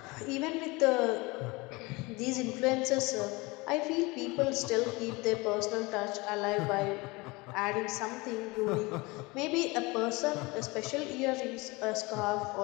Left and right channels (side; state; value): right; quieter; 24.4 dB